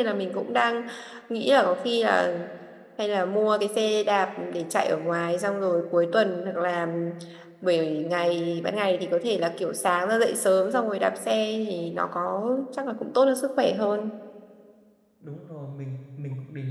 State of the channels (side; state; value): both; identical; correlation 1.00